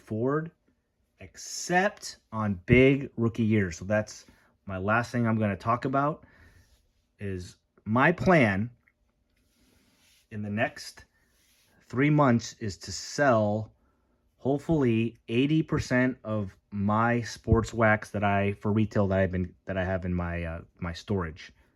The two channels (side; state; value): both; identical; correlation 1.00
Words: except on big rookie years. So that's my last thing I'm going to talk about is my plan in the next 3 months is to sell hopefully 80% of my sports wax that for retail that I have in my my storage.